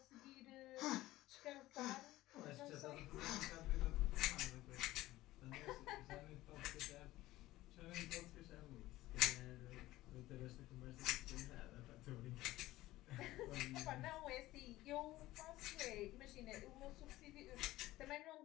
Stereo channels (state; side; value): quieter; right; 16.8 dB